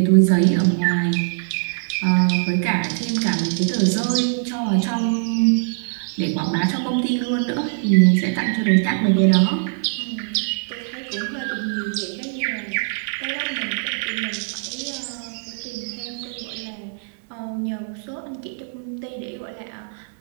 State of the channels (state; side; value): silent; left; digital silence